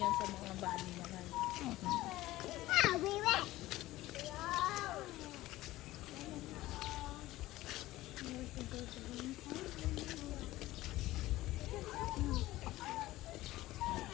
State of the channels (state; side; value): quieter; right; 16.8 dB